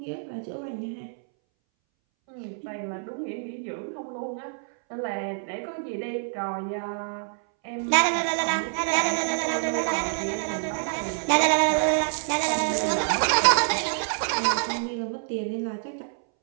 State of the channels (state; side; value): silent; left; 60 dB below the other